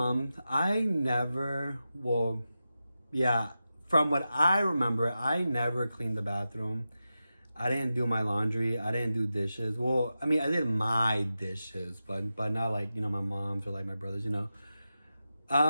from what I remember, I never cleaned the bathroom. I didn't do my laundry. I didn't do dishes. Well, I did my dishes, but not like, my mom's or like my brothers, I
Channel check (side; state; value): both; inverted; correlation -0.91